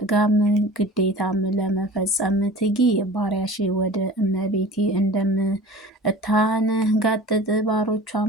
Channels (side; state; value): both; normal; correlation 0.40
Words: ግዴታም ለመፈጸም ትጊ። ባሪያሽ ወደ እመቤቴ እንደምታንጋጥጥ